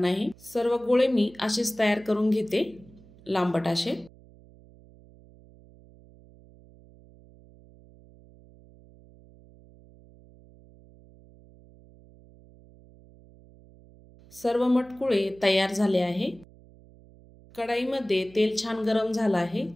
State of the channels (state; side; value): noise; right; hum, 24 dB below the sound